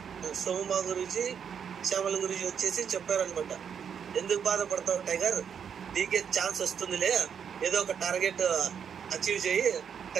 సోము మహా గురూజీ, శ్యామల గురించి వచ్చేసి చెప్పారనమాట, ఎందుకు బాధపడతావు టైగర్, నీకే ఛాన్స్ వస్తుందిలే, ఏదో ఒక టార్గెట్ అచీవ్ చేయి,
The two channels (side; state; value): left; quieter; 7.5 dB